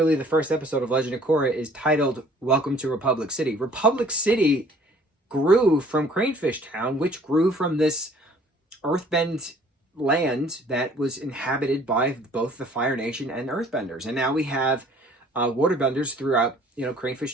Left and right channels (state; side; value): normal; both; correlation 0.55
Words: the first episode of Legend of Korra is titled Welcome to Republic City. Republic City grew from Cranefishtown, which grew from this earthbend land that was inhabited by both the Fire Nation and Earthbenders. And now we have waterbenders throughout,